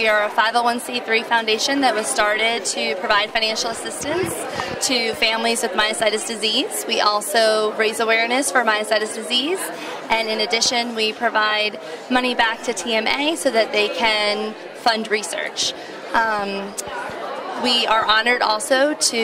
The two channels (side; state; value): both; identical; correlation 1.00